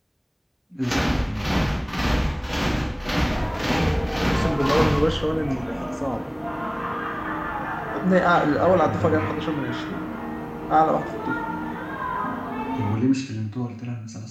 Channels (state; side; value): identical; both; correlation 1.00